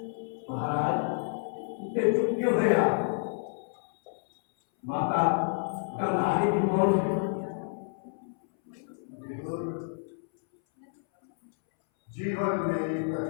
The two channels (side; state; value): right; silent; 58 dB below the other